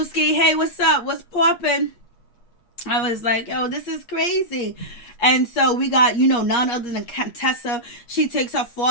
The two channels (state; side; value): late; right; 8.4 ms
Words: hey, what's up? What's poppin'? I was like, yo, this is crazy. And so we got, none other than Contessa. She takes her